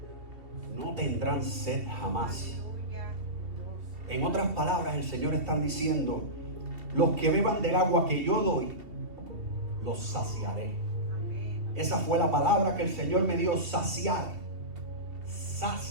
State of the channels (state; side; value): late; left; 2.4 ms